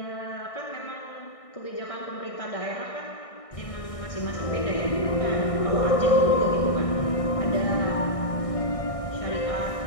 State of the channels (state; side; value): late; right; 1.6 ms